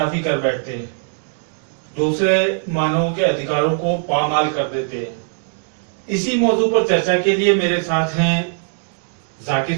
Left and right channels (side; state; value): left; silent; digital silence